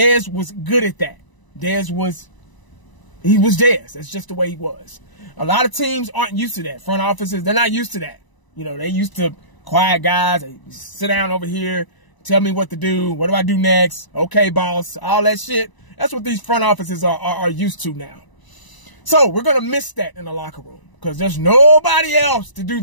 was good at that. He was Dez. That's just the way he was. A lot of teams aren't used to that. Front offices, they're not used to that. You know, they used to quiet guys. They sit down over here, tell me what to do. What do I do next? Okay, boss. All that shit. That's what these front offices are used to now. So we're going to miss that in the locker room because there's nobody else to do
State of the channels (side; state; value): right; late; 1.0 ms